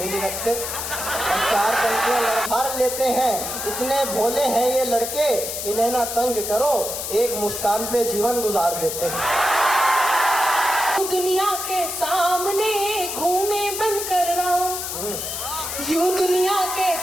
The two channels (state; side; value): noise; left; hiss, 5 dB below the sound